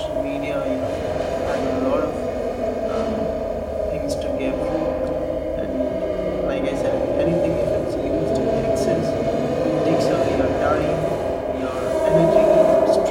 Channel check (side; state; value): both; identical; correlation 1.00